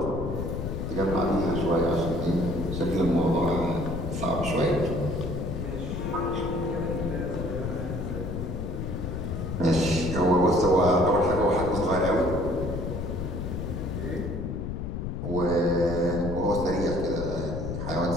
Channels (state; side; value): noise; left; rumble, 4 dB below the sound